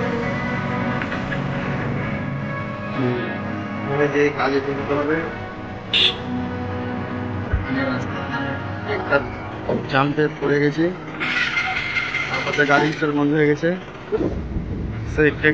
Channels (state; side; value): identical; both; correlation 1.00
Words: যে কাজে যেতে হবে একটা জাম্পে পড়ে গেছি, তারপরে গাড়ি স্টার্ট বন্ধ হয়ে গেছে। সেই